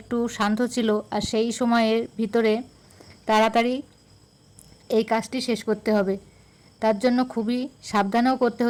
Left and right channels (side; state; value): both; identical; correlation 1.00